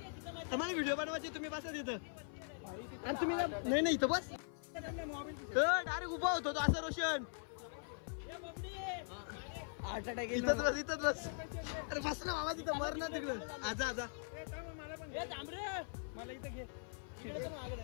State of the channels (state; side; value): silent; right; 50 dB below the other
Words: आम्हाला व्हिडिओ बनवायचे. तुम्ही बसा तिथं. आणि तुम्ही नाही इथं बस. डायरेक्ट उभा होतो तो असं रोशन. इथंच बस. अरे बस ना बाबा तिथं. मर ना तिकडं. आजा मला इथं घे.